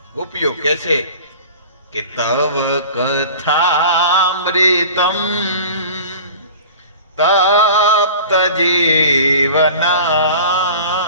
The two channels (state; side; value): inverted; both; correlation -0.40